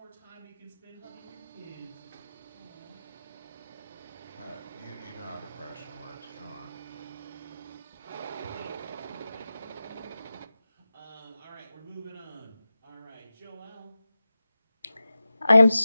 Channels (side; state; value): both; inverted; correlation -0.95